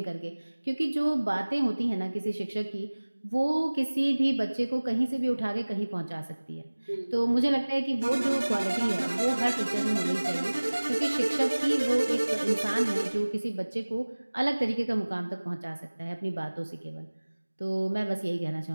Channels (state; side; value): inverted; both; correlation -1.00